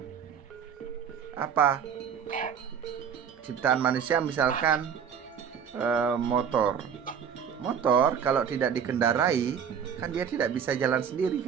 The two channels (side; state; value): left; quieter; 7.7 dB